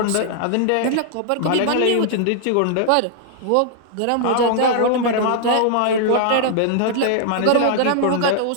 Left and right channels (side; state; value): both; different; correlation -0.01